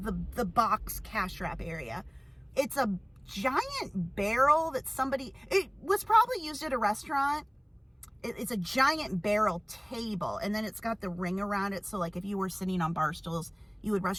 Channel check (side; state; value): both; identical; correlation 1.00